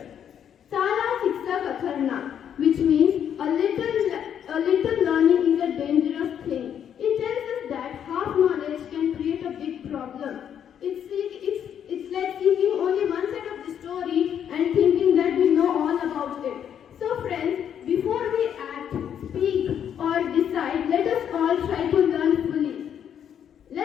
Sara Shiksha Katharna, which means a little learning is a dangerous thing. It tells us that half knowledge can create a big problem. It's like seeking only one side of the story and thinking that we know all about it. So friends, before we act, speak or decide, let us all try to learn fully.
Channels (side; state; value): right; quieter; 9.0 dB